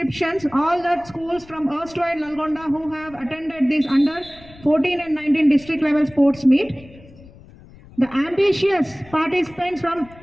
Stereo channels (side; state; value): left; noise; rumble, 22 dB below the sound